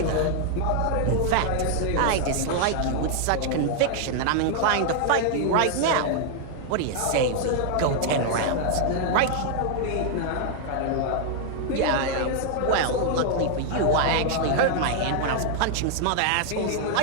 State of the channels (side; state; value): both; different; correlation 0.00